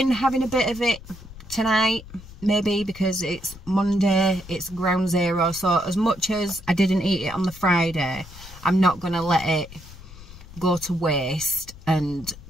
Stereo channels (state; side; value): noise; left; rumble, 17 dB below the sound